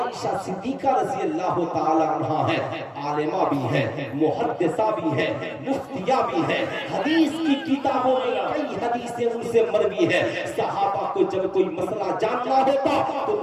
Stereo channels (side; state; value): both; identical; correlation 1.00